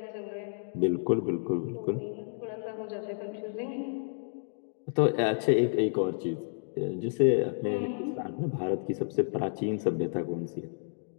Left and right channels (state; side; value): silent; right; digital silence